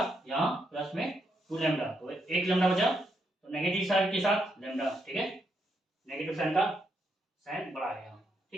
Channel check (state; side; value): normal; both; correlation 0.79